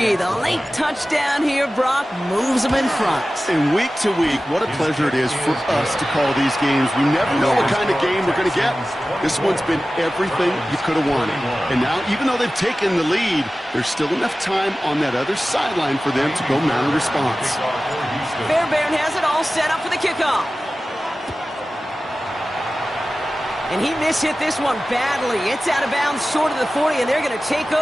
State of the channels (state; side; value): normal; both; correlation 0.96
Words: The late touchdown here, Brock, moves them in front. And week to week, what a pleasure it is for us to call these games. We never know what kind of game we're going to get. This one's been everything you could have wanted. And now, even though they've taken the lead, there's still enough time on that other sideline for them to go mount a response. Fairbairn has it all set up for the kickoff. And he mishit this one badly. It's out of bounds short of the 40, and they're going to take